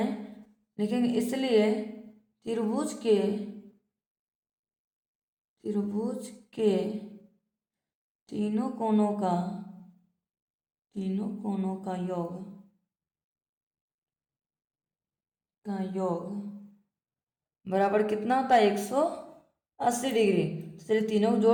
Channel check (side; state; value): both; identical; correlation 1.00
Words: लिखेंगे इसलिए त्रिभुज के तीनों कोणों का योग बराबर कितना होता है 180 डिग्री। तो चलिए तीनों को